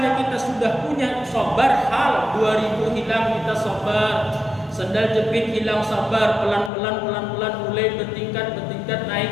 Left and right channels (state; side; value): drops out; right; at 6.7 s